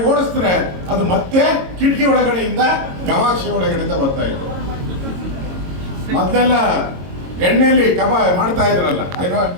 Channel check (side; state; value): left; late; 22 ms